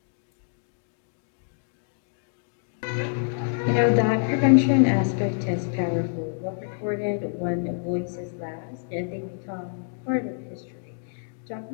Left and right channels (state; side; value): silent; right; digital silence